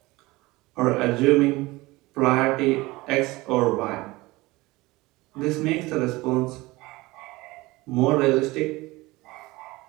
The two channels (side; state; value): left; quieter; 21.0 dB